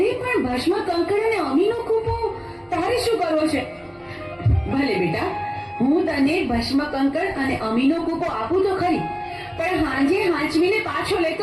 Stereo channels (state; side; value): identical; both; correlation 1.00